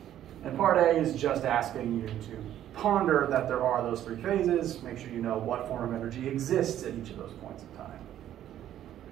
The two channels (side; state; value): left; quieter; 11.6 dB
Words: And part A is just asking you to ponder that there are those 3 phases. Make sure you know what form of energy exists at each of those points in time.